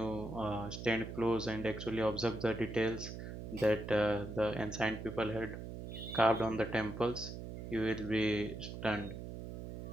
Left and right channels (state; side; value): noise; right; hum, 8 dB below the sound